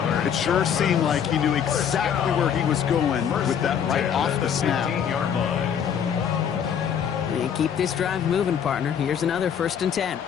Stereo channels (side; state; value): right; quieter; 8.1 dB